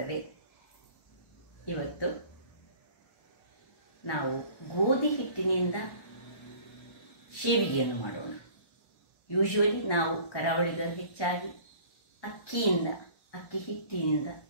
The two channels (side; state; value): right; late; 1.2 ms